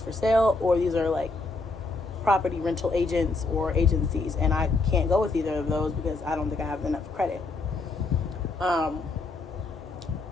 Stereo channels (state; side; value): quieter; right; 3.6 dB